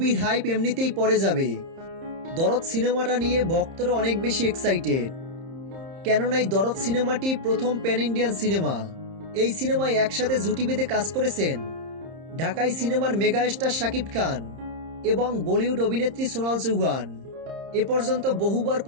হাইপ এমনিতেই পড়ে যাবে। দরদ সিনেমাটা নিয়ে ভক্তরা অনেক বেশি এক্সাইটেড, কেননা এই দরদ সিনেমাটি প্রথম প্যান ইন্ডিয়ান সিনেমা। এই সিনেমায় একসাথে জুটি বেঁধে কাজ করেছেন ঢাকাই সিনেমার মেগা স্টার শাকিব খান এবং বলিউড অভিনেত্রী সোনাল চৌহান। এ পর্যন্ত বহুবার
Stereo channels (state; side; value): late; left; 30 ms